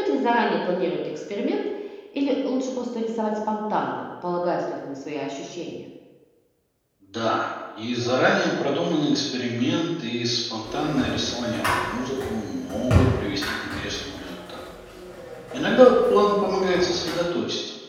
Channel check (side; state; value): both; identical; correlation 1.00